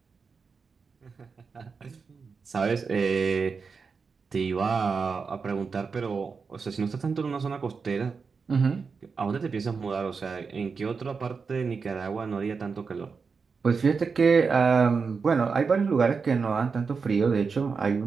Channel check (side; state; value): left; quieter; 5.2 dB